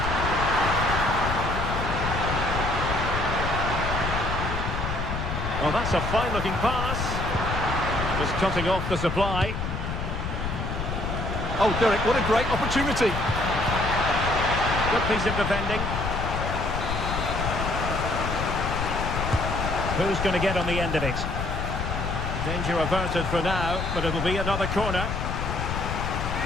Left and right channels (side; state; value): left; noise; rumble, 3 dB below the sound